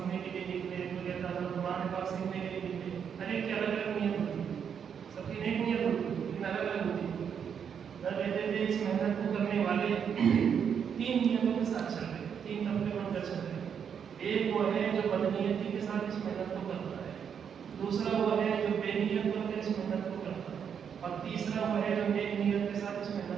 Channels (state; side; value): quieter; left; 7.6 dB